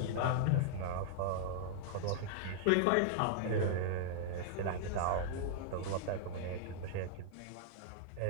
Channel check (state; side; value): different; both; correlation -0.01